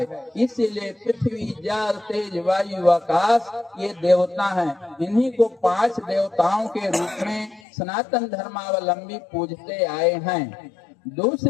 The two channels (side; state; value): right; drops out; at 7.6 s